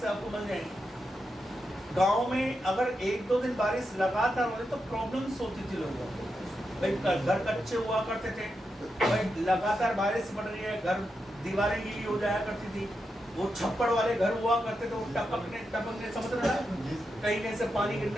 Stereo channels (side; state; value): both; normal; correlation 0.86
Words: आपको मिल जाएंगे। गांव में अगर 1-2 दिन बारिश लगातार हो रही तो प्रॉब्लम्स होती थी लोगों को। भाई घर कच्चे हुआ करते थे, भाई लगातार बारिश पड़ रही है, घर दीवारें गीली हो जाया करती थी, वो छप्पड़ वाले घर हुआ करते थे, वो टपकने समझ रहे हैं, कहीं कहीं से पानी